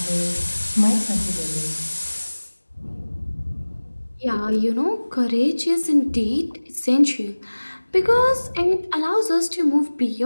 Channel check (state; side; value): inverted; both; correlation -1.00